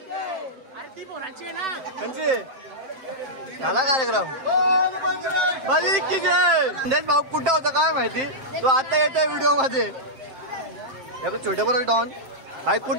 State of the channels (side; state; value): left; late; 7.6 ms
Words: झाला कार्यक्रम. बली की जय. संदेश भाऊ कुठं होता काय माहिती. तो आता येतोय व्हिडिओ मध्ये. छोटे बरोबर डॉन भाई